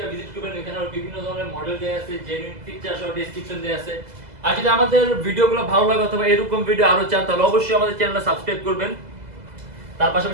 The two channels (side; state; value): left; late; 2.0 ms